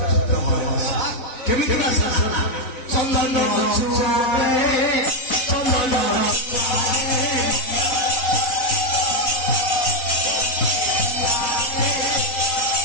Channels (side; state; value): right; late; 4.0 ms